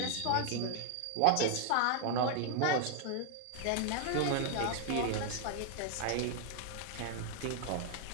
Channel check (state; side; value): different; both; correlation 0.00